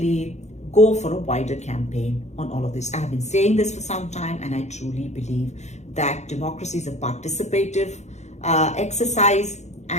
go for a wider campaign on all of this. I have been saying this for some time, and I truly believe that democracy is a participative exercise,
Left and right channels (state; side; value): late; right; 0.33 ms